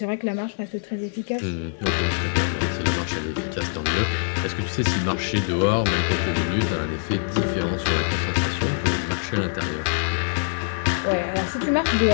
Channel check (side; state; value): right; silent; 63 dB below the other